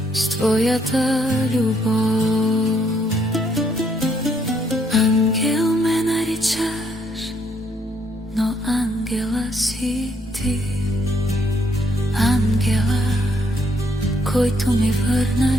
с твоята любов. Ангел ме наричаш, но ангела си ти. Ангела, който ми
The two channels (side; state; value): both; normal; correlation 0.71